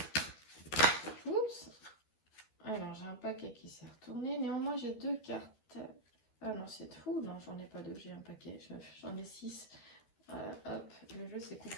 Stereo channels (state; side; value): late; right; 13 ms